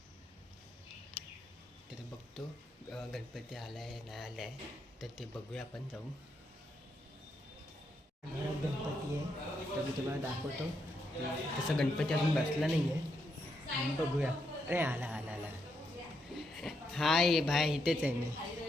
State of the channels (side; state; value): both; normal; correlation 0.80